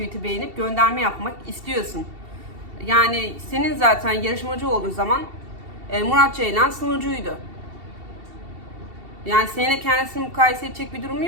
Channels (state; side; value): late; left; 2.7 ms